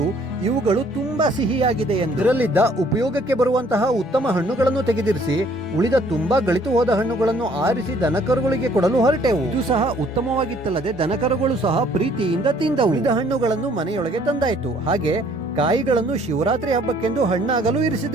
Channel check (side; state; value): both; normal; correlation 0.60